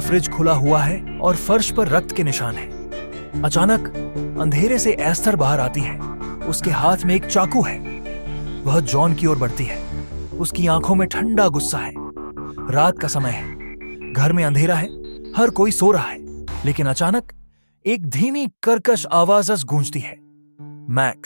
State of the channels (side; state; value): both; inverted; correlation -1.00